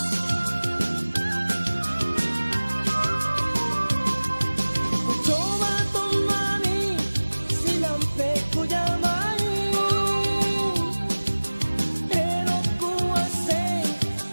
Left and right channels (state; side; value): inverted; both; correlation -1.00